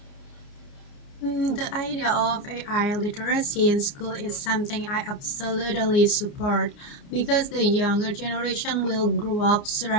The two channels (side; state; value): right; late; 29 ms